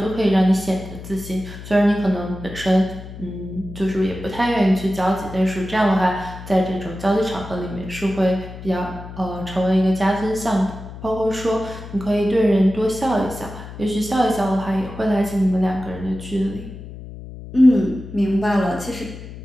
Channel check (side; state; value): left; noise; hum, 13 dB below the sound